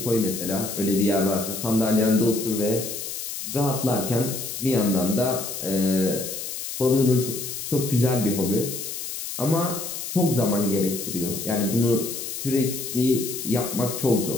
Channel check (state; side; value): noise; left; hiss, 6 dB below the sound